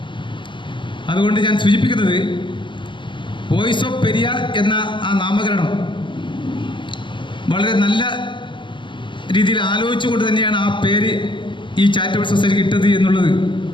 അതുകൊണ്ട് ഞാൻ സൂചിപ്പിക്കുന്നത്, വോയിസ് ഓഫ് പെരിയ എന്ന ആ നാമകരണം വളരെ നല്ല രീതിയിൽ ആലോചിച്ചുകൊണ്ട് തന്നെയാണ് ആ പേര് ഈ ചാരിറ്റബിൾ സൊസൈറ്റി കിട്ടത് എന്നുള്ളത്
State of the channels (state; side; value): late; right; 0.23 ms